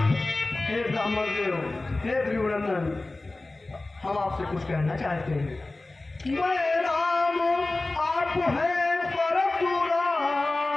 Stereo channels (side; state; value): right; quieter; 3.0 dB